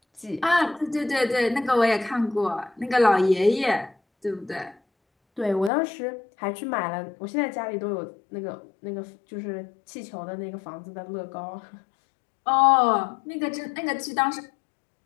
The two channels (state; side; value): drops out; right; at 5.7 s